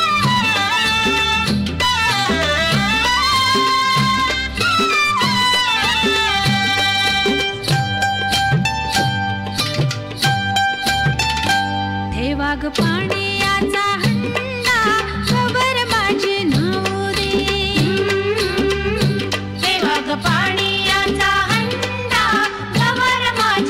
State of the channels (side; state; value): both; identical; correlation 1.00